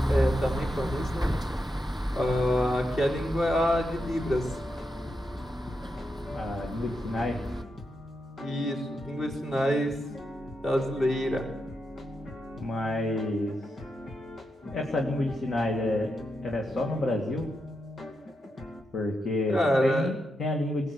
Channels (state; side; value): normal; both; correlation 0.85